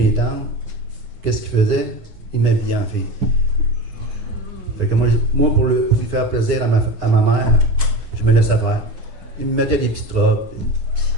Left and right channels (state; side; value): late; left; 9.6 ms